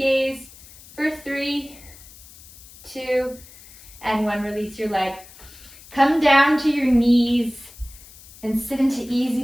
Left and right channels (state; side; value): noise; left; hiss, 21 dB below the sound